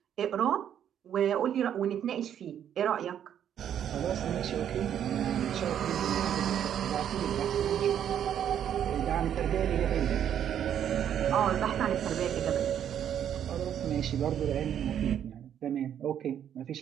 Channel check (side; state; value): left; quieter; 9.6 dB